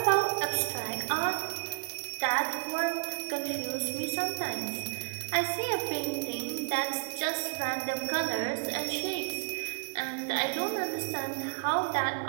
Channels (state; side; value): silent; left; digital silence